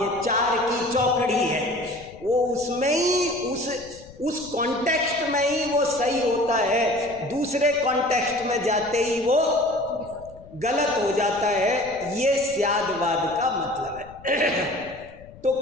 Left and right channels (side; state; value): left; noise; rumble, 21 dB below the sound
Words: ये चार की चौकड़ी है, वो उसमें ही उस कॉन्टेक्स्ट में ही वो सही होता है, दूसरे कॉन्टेक्स्ट में जाते ही वो गलत हो जाता है। ये स्यादवाद का मतलब है। तो